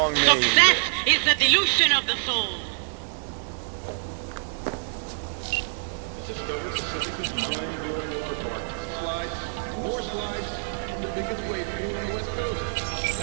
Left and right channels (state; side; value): silent; left; 61 dB below the other